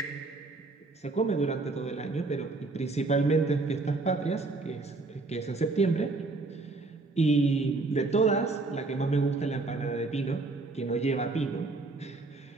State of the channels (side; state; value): left; quieter; 3.5 dB